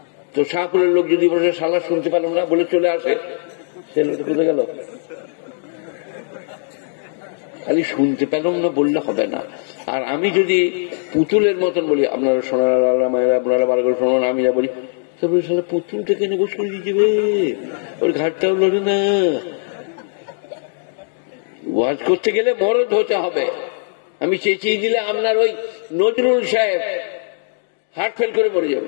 তো শাহপুরের লোক যদি বসে শালা শুনতে পেলাম না বলে চলে আসে, সে লোকটা কোথায় গেল? খালি শুনতে পেলাম না বললে হবে না। আর আমি যদি পুতুলের মতন বলি, আপনারা সোনারা মায়েরা আপনারা বার করে শোনান, আমি যা বলি, তারপরে শালা পুতুলটা কেন বসে দিয়ে যাবে, ওর ঘাটটাও লড়ে না। ওয়াজ করতে গেলে মরদ হতে হবে। আমি চেঁচিয়ে দিলে আপনার ওই নজরুল সাহেব হার্ট ফেল করে মরে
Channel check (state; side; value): silent; right; digital silence